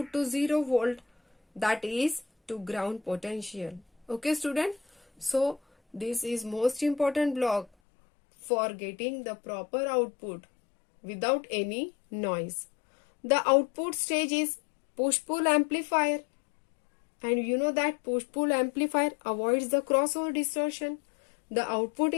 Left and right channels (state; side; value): drops out; right; at 7.7 s